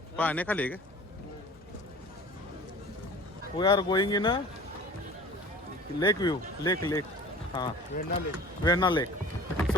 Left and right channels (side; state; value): both; normal; correlation 0.42